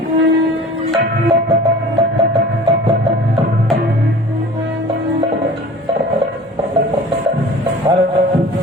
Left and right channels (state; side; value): normal; both; correlation 0.42